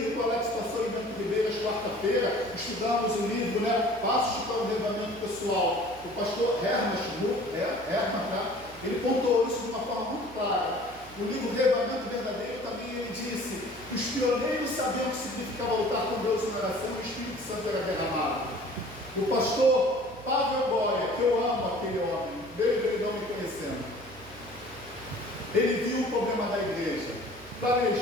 que o Alex passou em Bento Ribeiras, quarta-feira, estudamos o livro, né? Passos para o Reavivamento Pessoal. O pastor Herman, ele pontuou isso de uma forma muito clara. No livro Reavivamento Verdadeiro também ele disse que os pioneiros sabiam o que significava lutar com Deus em oração e o Espírito Santo era derramado. O pastor Pavel Goya, que eu amo aquele homem, veio não me conhecendo, ele viu o problema da igreja.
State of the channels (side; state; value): right; noise; hum, 20 dB below the sound